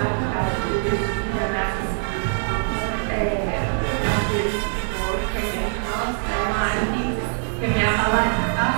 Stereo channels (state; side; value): silent; left; 63 dB below the other